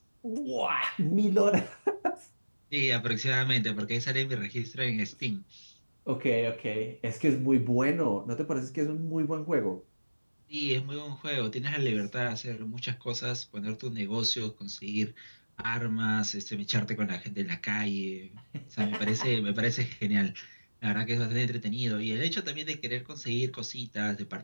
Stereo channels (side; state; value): both; inverted; correlation -1.00